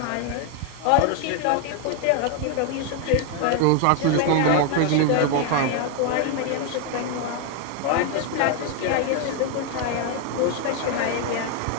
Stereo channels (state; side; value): different; both; correlation 0.01